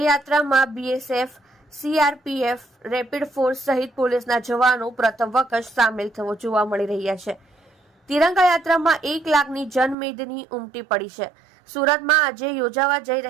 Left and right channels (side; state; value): left; drops out; at 10.0 s